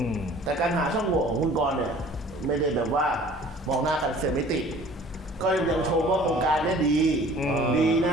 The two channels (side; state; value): both; normal; correlation 0.49